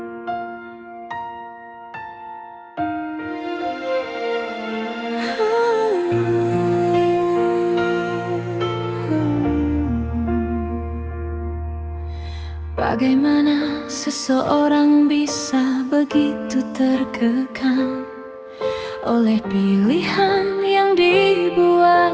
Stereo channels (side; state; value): both; identical; correlation 1.00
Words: Bagaimana seseorang bisa begitu terkekang oleh pilihan yang dibuat